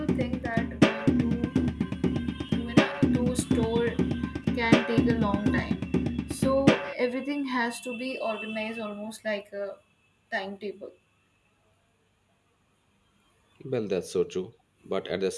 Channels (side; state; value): both; identical; correlation 1.00